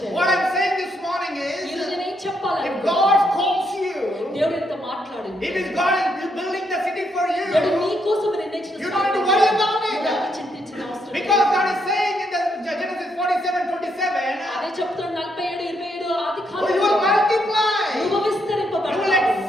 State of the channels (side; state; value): both; normal; correlation 0.76